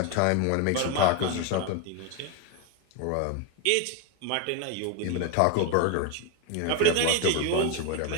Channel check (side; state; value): both; different; correlation 0.01